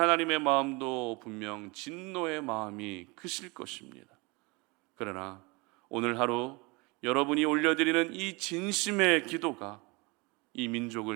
마음도 분명 진노의 마음이 크실 것입니다. 그러나 오늘 하루 여러분이 올려드리는 이 진심의 기도가 이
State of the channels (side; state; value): left; quieter; 26.7 dB